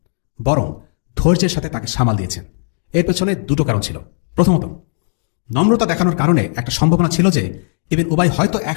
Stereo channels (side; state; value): right; silent; digital silence